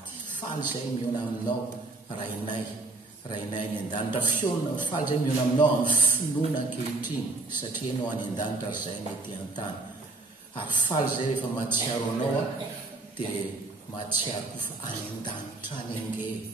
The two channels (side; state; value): left; quieter; 3.2 dB